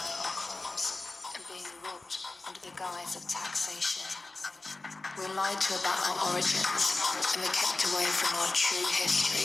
on crumbs and being robbed under the guise of taxation. We're lied to about our origins and we're kept away from our true history.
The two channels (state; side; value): quieter; right; 3.2 dB